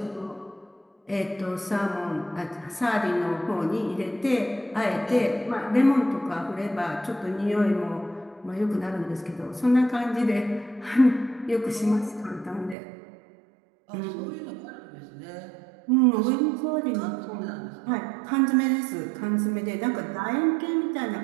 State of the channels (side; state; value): left; drops out; at 12.8 s